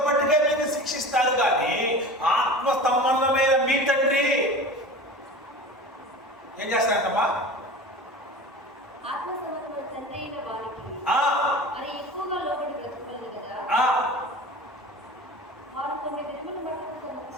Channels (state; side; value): normal; both; correlation 0.35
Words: మట్టుకే మీకు శిక్షిస్తారు, కానీ ఆత్మ సంబంధమైన మీ తండ్రి ఏం చేస్తారంటమ్మా?